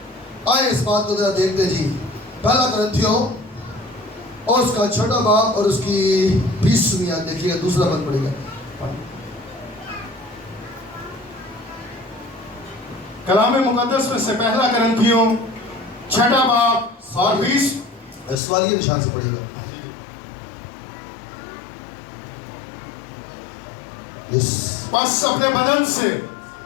آئے اس بات کو ذرا دیکھتے جی. پہلا کرنتھیوں اور اس کا 6 باب اور اس کی 20ویں آیت دیکھیے گا, دوسرا بند پڑے گا. کلام مقدس میں سے پہلا کرنتھیوں 6 باب اور 20 سوالیہ نشان سے پڑھیے گا. پس اپنے بدن سے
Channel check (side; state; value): right; drops out; at 18.4 s